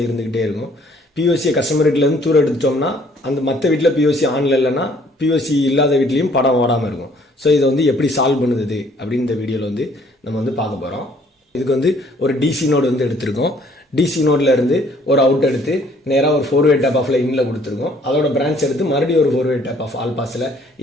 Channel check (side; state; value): both; normal; correlation 0.61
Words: இருந்துக்கிட்டே இருக்கும். பிஓசியை கஸ்டமர் வீட்டிலேருந்து தூரம் எடுத்துட்டோம்னா அந்த மற்ற வீட்டில் பிஓசி ஆனில் இல்லைன்னா பிஓசி இல்லாத வீட்லேயும் படம் ஓடாமல் இருக்கும். ஸோ இதை வந்து எப்படி சால்வ் பண்ணுது அப்படின்னு இந்த வீடியோவில் வந்து நம்ம வந்து பார்க்க போகிறோம். இதுக்கு வந்து ஒரு டிசி நோடு வந்து எடுத்திருக்கோம். டிசி நோடில் இருந்து ஒரு அவுட் எடுத்து நேராக ஒரு 4-way டேப் ஆஃபில் இன்னில் கொடுத்துருக்கோம். அதோட பிரான்ச் எடுத்து மறுபடியும் ஒரு 4-way டேப் ஆஃப் ஆல் பாஸில்